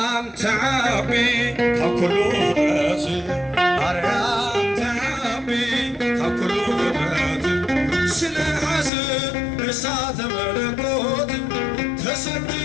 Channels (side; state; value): right; drops out; at 8.9 s